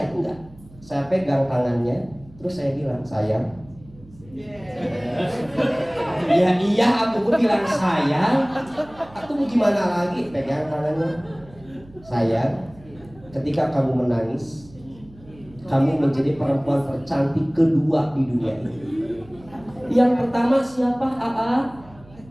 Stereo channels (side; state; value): right; noise; hum, 23 dB below the sound